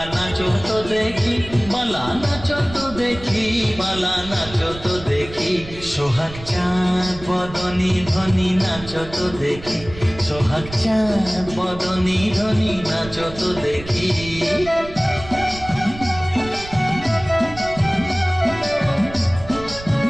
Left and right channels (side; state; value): right; noise; rumble, 15 dB below the sound